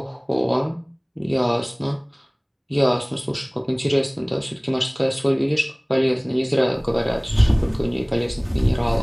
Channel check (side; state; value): both; identical; correlation 1.00